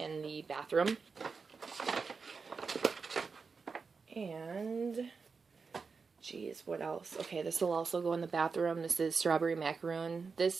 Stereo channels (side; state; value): left; quieter; 5.0 dB